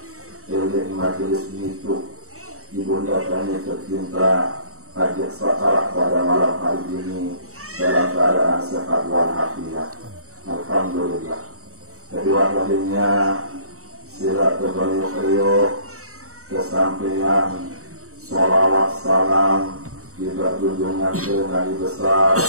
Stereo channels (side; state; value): left; late; 0.64 ms